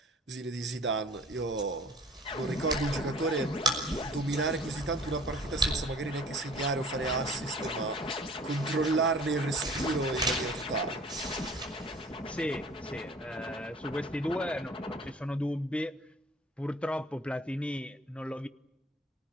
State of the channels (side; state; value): both; normal; correlation 0.48